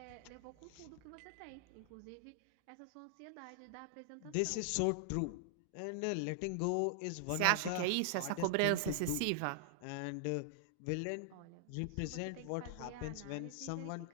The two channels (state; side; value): different; both; correlation 0.00